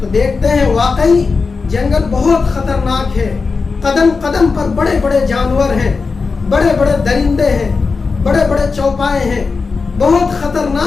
دیکھتے ہیں واقعی جنگل بہت خطرناک ہے، قدم قدم پر بڑے بڑے جانور ہیں، بڑے بڑے درندے ہیں، بڑے بڑے چوپائے ہیں، بہت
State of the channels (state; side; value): quieter; right; 4.5 dB